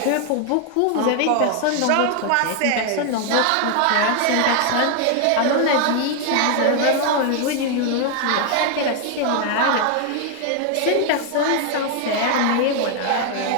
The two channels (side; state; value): both; different; correlation 0.00